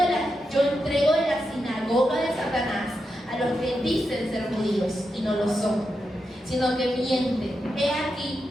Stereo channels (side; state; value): both; normal; correlation 0.87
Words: la sinagoga de Satanás a los que dicen ser judíos y no lo son, sino que mienten. He aquí,